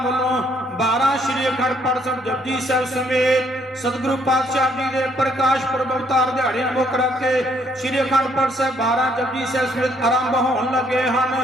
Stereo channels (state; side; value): normal; both; correlation 0.68